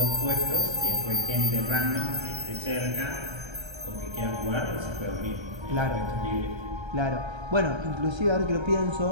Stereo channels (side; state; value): left; late; 1.3 ms